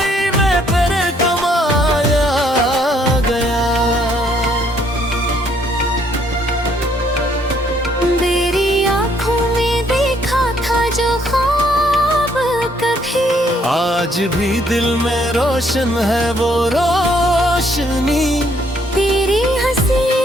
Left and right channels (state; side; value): normal; both; correlation 0.67